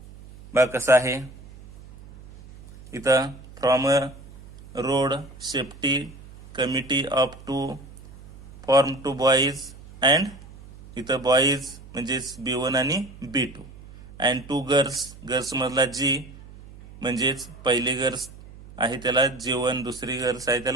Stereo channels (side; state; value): right; noise; hum, 19 dB below the sound